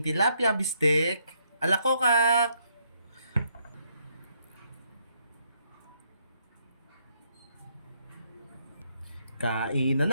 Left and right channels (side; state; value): both; inverted; correlation -0.73